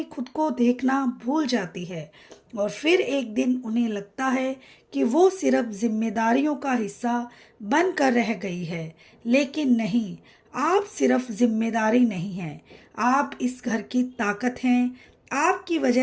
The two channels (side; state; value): both; identical; correlation 1.00